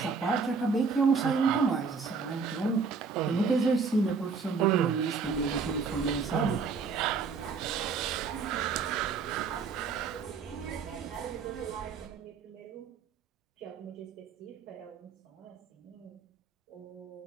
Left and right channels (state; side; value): quieter; left; 5.1 dB